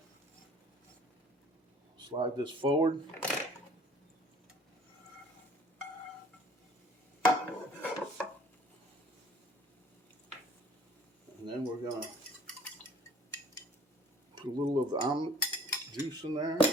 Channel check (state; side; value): normal; both; correlation 0.51